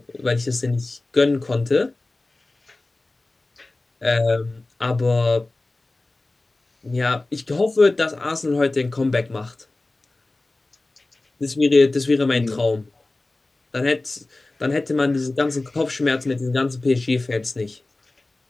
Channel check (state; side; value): quieter; right; 3.0 dB